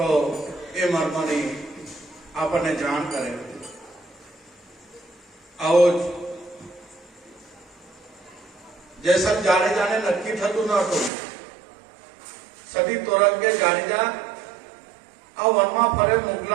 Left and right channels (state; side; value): drops out; left; at 11.1 s